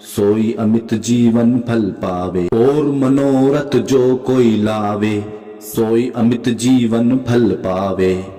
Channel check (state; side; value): identical; both; correlation 1.00